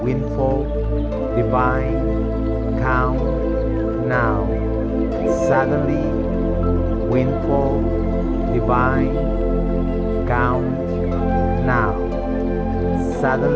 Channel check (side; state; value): both; identical; correlation 1.00